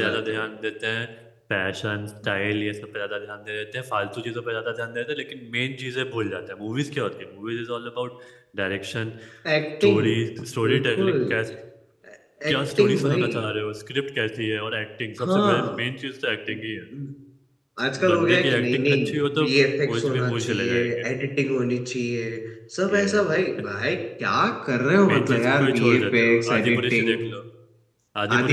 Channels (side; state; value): both; identical; correlation 1.00